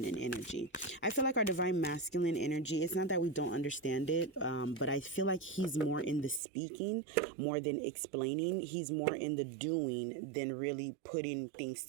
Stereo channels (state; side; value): drops out; left; at 6.4 s